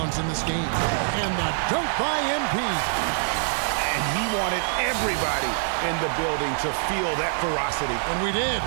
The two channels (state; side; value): silent; left; digital silence